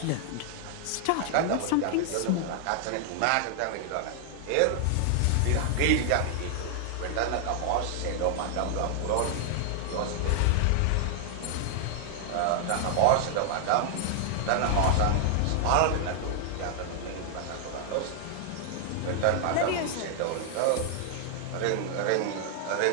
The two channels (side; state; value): both; different; correlation 0.00